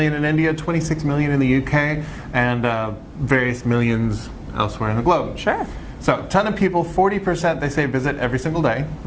in India, 26 million in the UK, and various millions elsewhere in the globe. Sure. So, a ton of people, 40% they say visit every single day.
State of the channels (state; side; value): identical; both; correlation 1.00